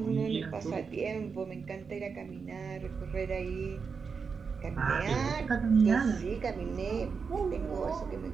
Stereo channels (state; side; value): quieter; left; 5.5 dB